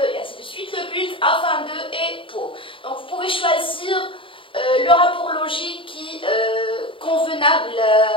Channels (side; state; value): right; late; 0.25 ms